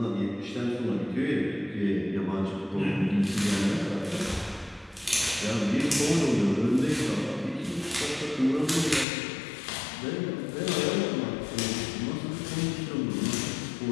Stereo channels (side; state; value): right; drops out; at 9.1 s